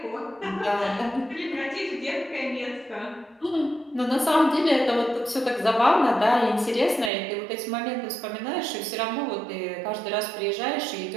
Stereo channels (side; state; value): left; drops out; at 7.1 s